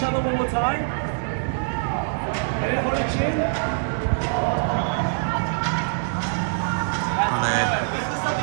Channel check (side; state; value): left; silent; digital silence